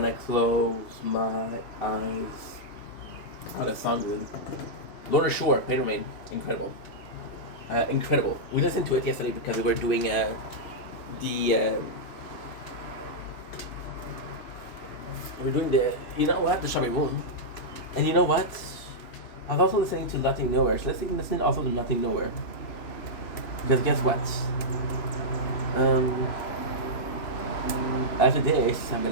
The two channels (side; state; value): right; late; 3.0 ms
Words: I close my eyes? Oh, that song good. Lorna Shore, Pain Remain, incredible. Incredible. We listened to it yesterday because we were doing you know what, the Shabby Moon. And you know what? I was also listening to Nothing Nowhere. So let's listen also to Nothing Nowhere. Because guess what? After this, I'm